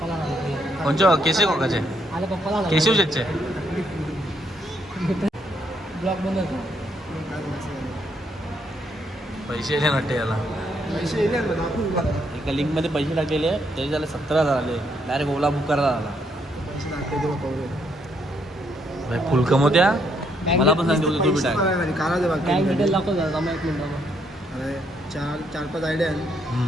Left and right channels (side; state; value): both; normal; correlation 0.73